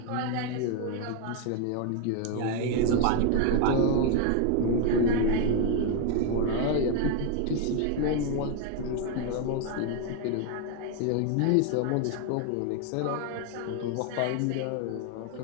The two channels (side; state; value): both; different; correlation 0.01